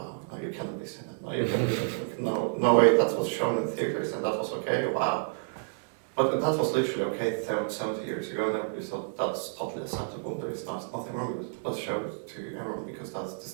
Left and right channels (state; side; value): silent; left; digital silence